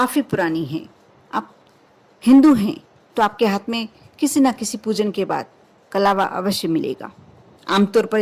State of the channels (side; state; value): both; identical; correlation 1.00